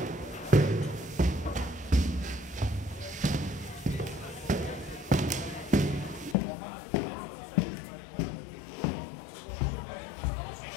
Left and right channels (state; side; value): drops out; right; at 6.4 s